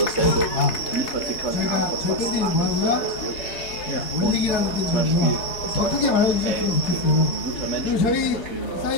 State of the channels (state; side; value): late; right; 4.6 ms